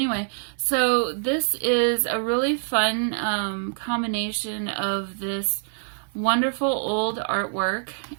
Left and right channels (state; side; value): silent; left; digital silence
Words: so this is a really fun combination of this wonderful old artwork